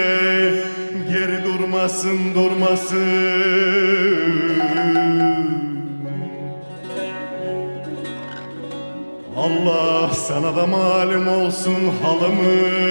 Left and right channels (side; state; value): both; inverted; correlation -1.00